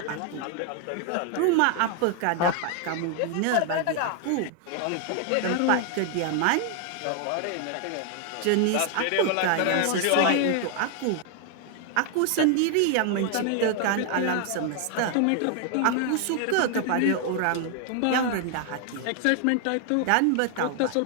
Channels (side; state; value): both; different; correlation 0.00